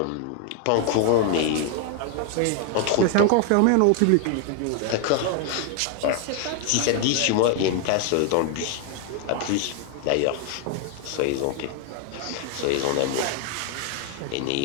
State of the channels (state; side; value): different; both; correlation 0.00